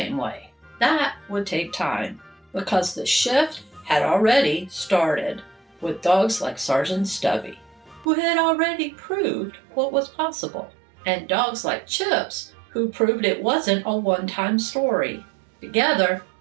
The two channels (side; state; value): left; drops out; at 8.1 s